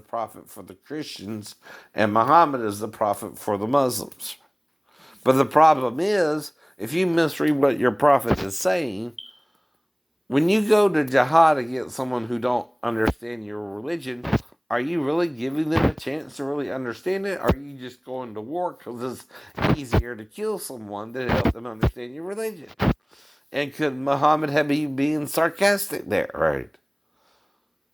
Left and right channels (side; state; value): both; identical; correlation 1.00